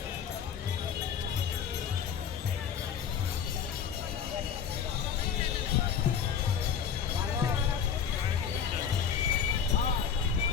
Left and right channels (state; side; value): quieter; right; 7.6 dB